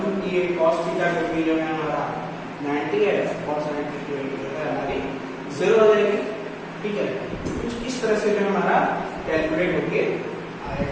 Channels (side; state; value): both; identical; correlation 1.00